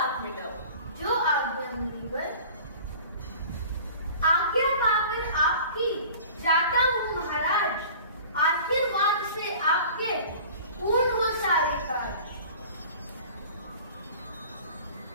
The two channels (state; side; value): inverted; both; correlation -0.43